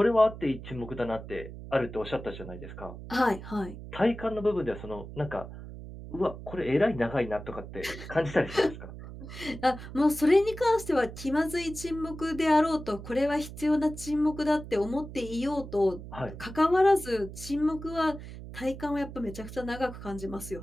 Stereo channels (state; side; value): noise; right; hum, 12 dB below the sound